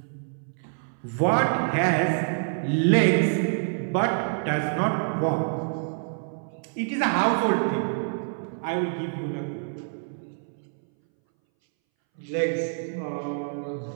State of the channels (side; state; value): left; silent; 60 dB below the other